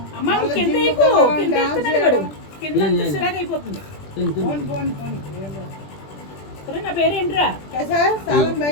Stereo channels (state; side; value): late; right; 21 ms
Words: అమ్మ మళ్ళీ కింద జిమ్కి ఎక్కువ వెళ్ళడం, కింద డాన్స్ ఎక్కుతున్నాడు చేయడం. కింద అంతా చిరాకు అయిపోతుంది. తిను, తిను. పోను, పోను, పోను. ఒరేయ్, నా పేరు ఏంట్రా? कैसा है सालन भाई